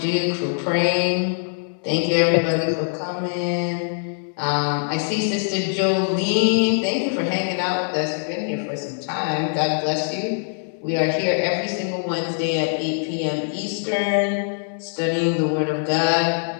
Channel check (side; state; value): right; silent; digital silence